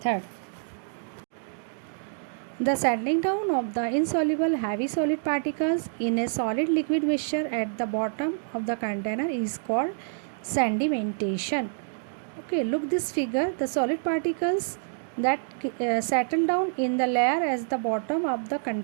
The settling down of the insoluble heavy solid particles in a solid liquid mixture at the bottom of the container is called sedimentation. Okay, look this figure. The solid particles that settle down in the layer at the bottom of the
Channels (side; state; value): left; silent; digital silence